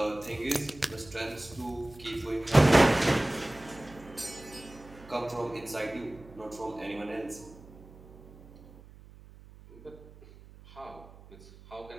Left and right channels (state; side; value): noise; right; hum, 20 dB below the sound